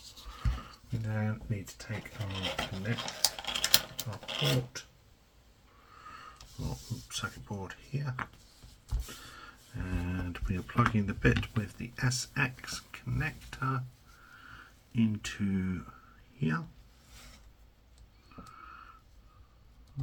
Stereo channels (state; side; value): identical; both; correlation 1.00